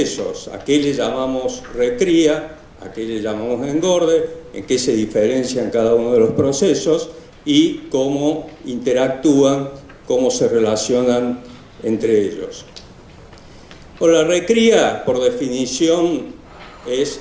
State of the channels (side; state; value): both; identical; correlation 1.00